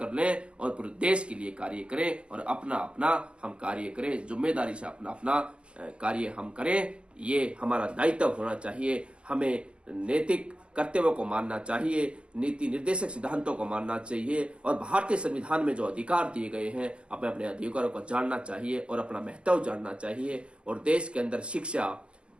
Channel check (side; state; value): left; late; 0.057 ms